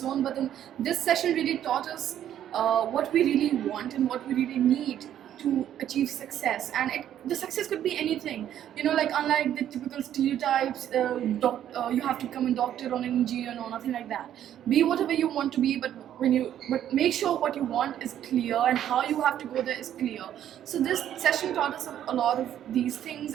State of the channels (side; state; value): left; quieter; 10.8 dB